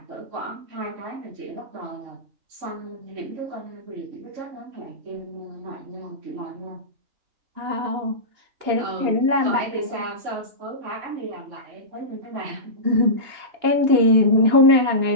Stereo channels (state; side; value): late; left; 2.9 ms